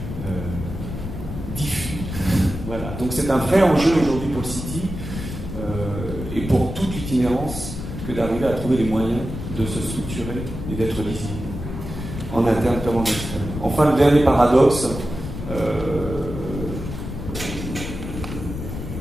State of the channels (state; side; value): noise; left; rumble, 7 dB below the sound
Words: diffus. Voilà. Donc c'est un vrai enjeu aujourd'hui pour le City et pour toute l'itinérance que d'arriver à trouver les moyens de se structurer et d'être lisible, en interne comme en externe. Enfin, le dernier paradoxe,